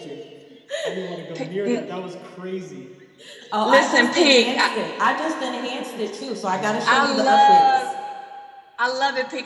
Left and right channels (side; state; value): both; identical; correlation 1.00